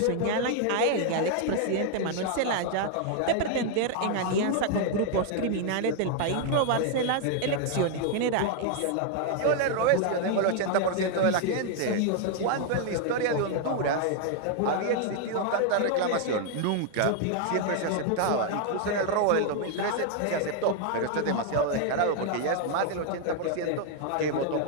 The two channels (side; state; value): both; different; correlation 0.00